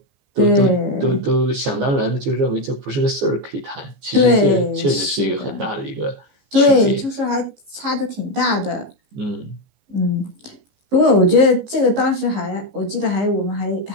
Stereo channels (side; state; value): left; late; 15 ms